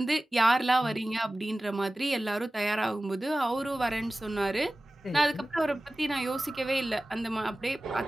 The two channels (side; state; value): both; normal; correlation 0.96